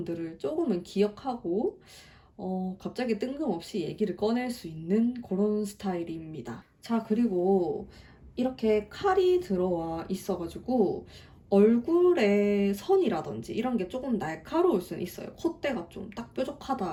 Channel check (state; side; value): identical; both; correlation 1.00